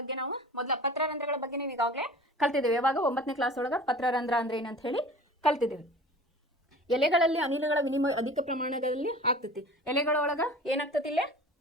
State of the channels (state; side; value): normal; both; correlation 0.41